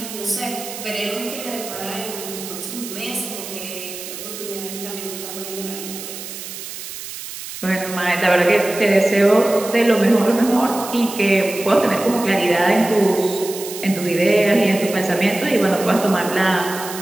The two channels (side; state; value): right; noise; hiss, 10 dB below the sound